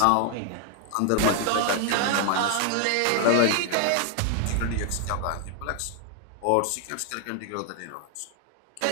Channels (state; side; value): different; both; correlation 0.00